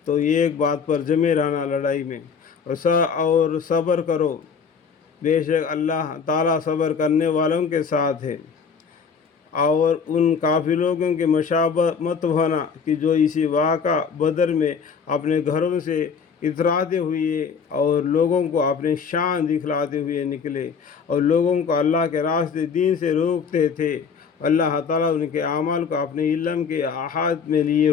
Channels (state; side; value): quieter; right; 6.1 dB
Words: تو یہ ایک بات پر جمے رہنا لڑائی میں، اور صبر کرو، بے شک اللہ تعالیٰ صبر کرنے والوں کے ساتھ ہے۔ اور ان کافر لوگوں کے مشابہ مت ہونا کہ جو اسی واقعہ بدر میں اپنے گھروں سے اتراتے ہوئے اور لوگوں کو اپنی شان دکھلاتے ہوئے نکلے اور لوگوں کو اللہ کے راستے دین سے روکتے تھے۔ اللہ تعالیٰ ان کے اعمال کو اپنے علم کے احاطے میں لیے